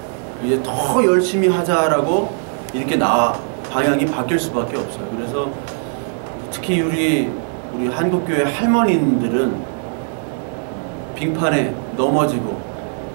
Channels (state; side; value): silent; left; 62 dB below the other